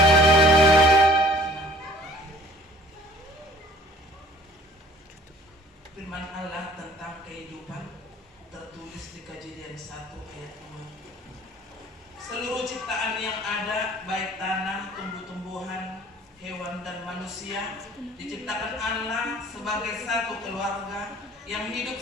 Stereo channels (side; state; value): both; normal; correlation 0.53